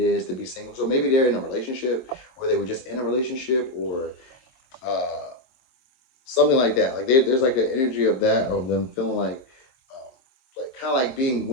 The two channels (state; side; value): late; right; 23 ms